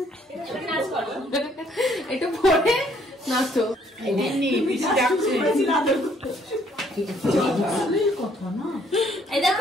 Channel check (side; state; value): both; normal; correlation 0.65